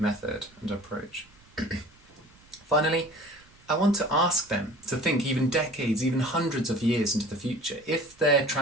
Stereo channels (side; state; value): right; noise; rumble, 29 dB below the sound